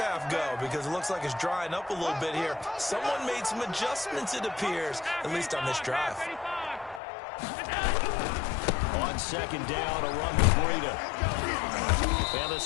go? Because it looks like it's drying up a little bit here. Someone made some adjustments, it appears, at least on this drive. On 2nd down, a run with Breida. And the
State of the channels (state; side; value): drops out; right; at 7.0 s